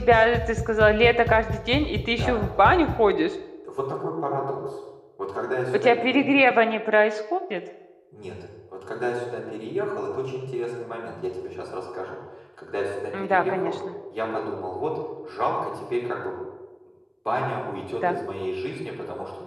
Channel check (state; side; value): identical; both; correlation 1.00